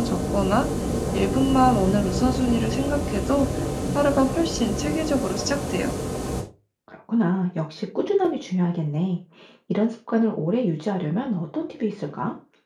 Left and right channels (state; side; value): identical; both; correlation 1.00